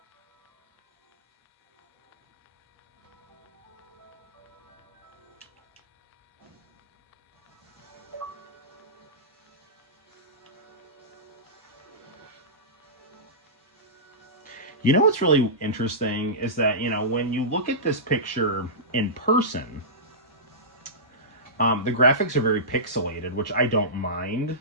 You know what's really interesting is that, you know, when you look at this picture in person, the graphics are very pixelated, which I don't mind,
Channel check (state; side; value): normal; both; correlation -0.18